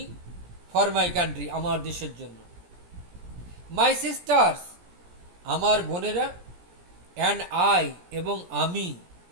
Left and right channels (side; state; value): left; late; 17 ms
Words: ফর মাই কান্ট্রি, আমার দেশের জন্য। মাই সিস্টার্স, আমার বোনেরা, অ্যান্ড আই, এবং আমি,